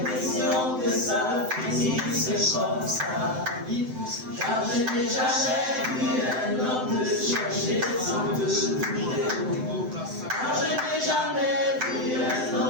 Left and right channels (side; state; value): left; late; 7.8 ms